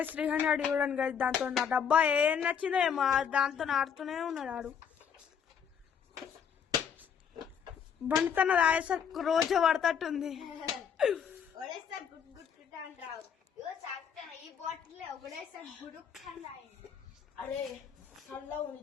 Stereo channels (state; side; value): quieter; right; 7.5 dB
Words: 300 చూడండి గైస్. దాంతో నా డబ్బా ఏం నచ్చిందో ఏమో దాంతో ఆడుతూనే ఉన్నాడు ఆడు. బండితన రాయేసరికి రోజు పడతట్టుంది. ఒకడేసారి గుడ్ గుడ్ గుడ్ అని రావు. ఇగో చాక్తాను ఈ బాటిల్ ఒకడేసారి గుడుక్ అని రాయింది. అరే చల్లగా ఉంది